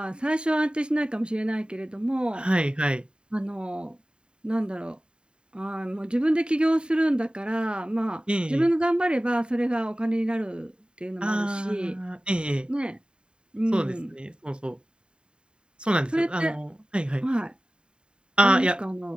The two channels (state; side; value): late; left; 0.051 ms